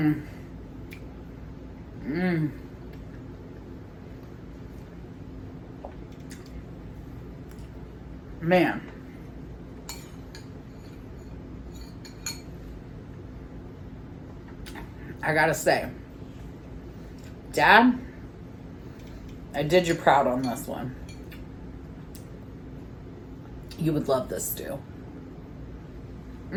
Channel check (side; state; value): both; identical; correlation 1.00